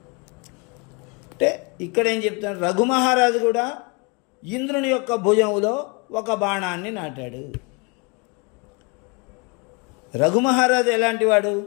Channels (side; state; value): right; quieter; 30.5 dB